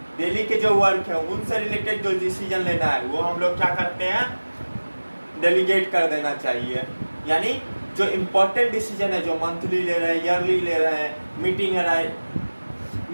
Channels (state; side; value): inverted; both; correlation -1.00